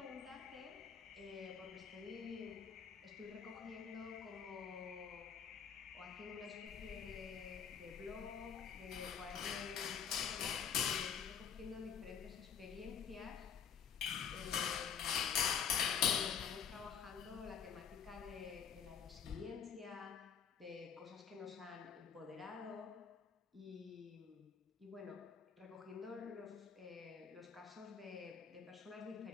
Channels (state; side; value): quieter; right; 7.4 dB